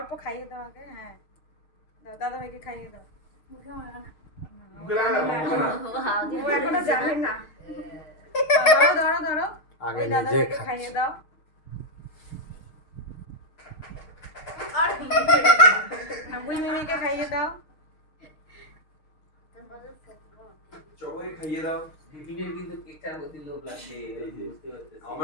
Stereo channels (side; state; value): right; late; 6.5 ms